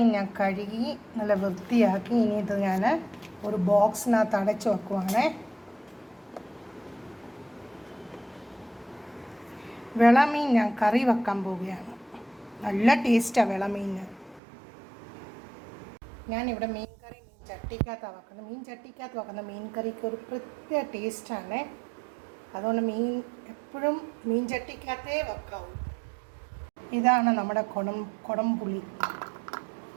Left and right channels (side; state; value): left; drops out; at 14.4 s